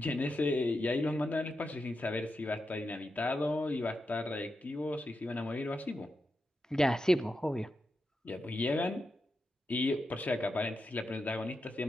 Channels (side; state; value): both; normal; correlation 0.87